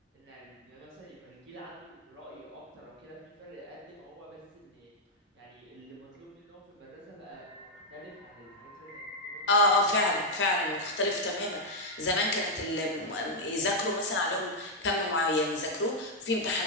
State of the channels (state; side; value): normal; both; correlation -0.01